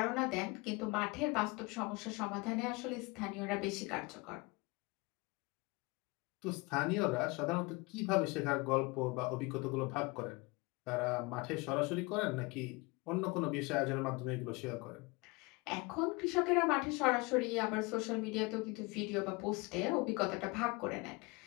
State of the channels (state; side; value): quieter; right; 26.0 dB